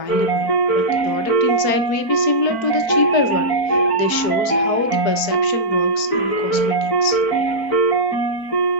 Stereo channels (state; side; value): late; right; 4.5 ms